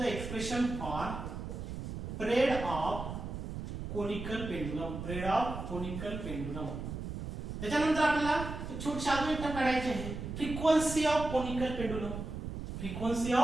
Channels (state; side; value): noise; right; rumble, 7 dB below the sound